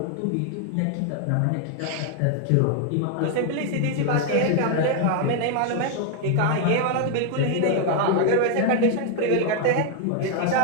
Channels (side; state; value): both; different; correlation 0.00